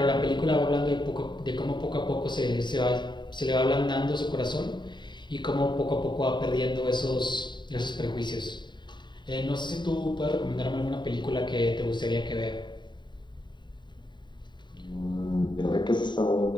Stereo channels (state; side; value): late; right; 0.22 ms